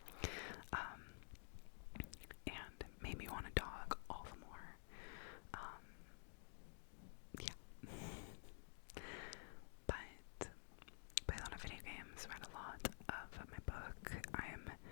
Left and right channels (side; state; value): right; silent; digital silence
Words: and made me want a dog all the more. Yeah. But played a lot of video games, read a lot of my book. I am